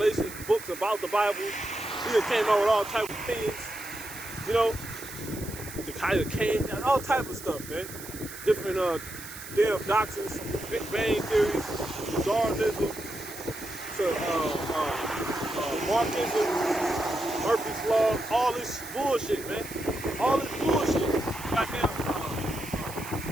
books about the Bible. He done came out with all type of things. You know? The kind of came, all type of stuff, man. Different damn doctrines, Big Bang Theory, Darwinism, to Marxism, Murphy's Law, all this bullshit, man. All this bullshit. Goddamn,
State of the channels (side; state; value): right; noise; hiss, 13 dB below the sound